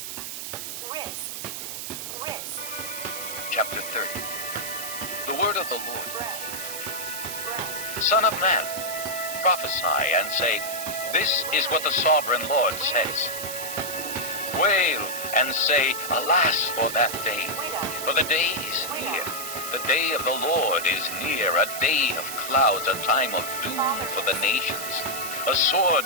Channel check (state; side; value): noise; right; hiss, 7 dB below the sound